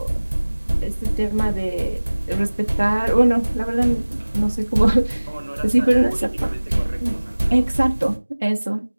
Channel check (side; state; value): both; inverted; correlation -1.00